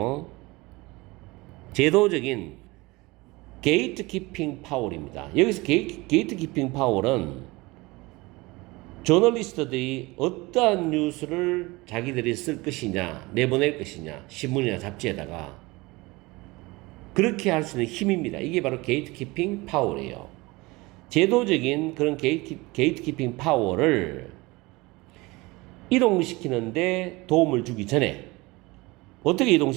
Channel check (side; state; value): left; quieter; 22.8 dB